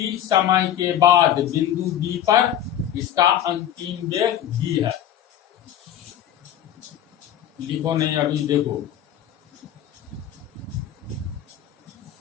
समय के बाद बिंदु B पर इसका अंतिम वेग v है। लिखो नहीं, अभी देखो,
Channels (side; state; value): right; quieter; 10.7 dB